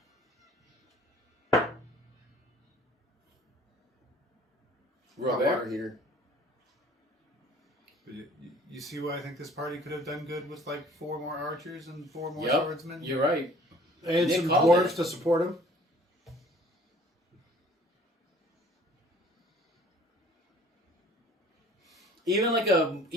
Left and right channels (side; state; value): both; normal; correlation 0.53